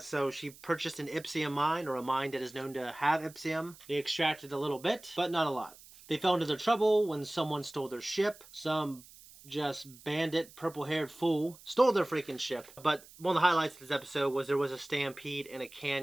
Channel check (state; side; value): noise; right; hiss, 21 dB below the sound